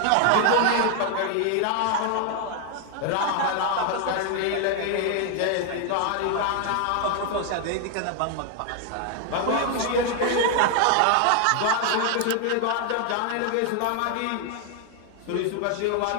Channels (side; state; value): both; different; correlation 0.00